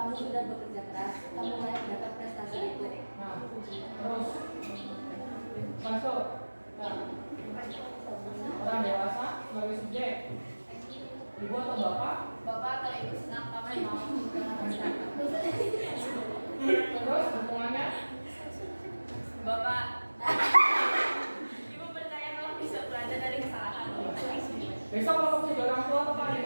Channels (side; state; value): both; inverted; correlation -1.00